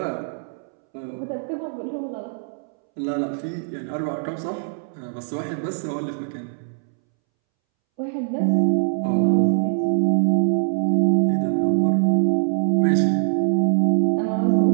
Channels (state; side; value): silent; left; 64 dB below the other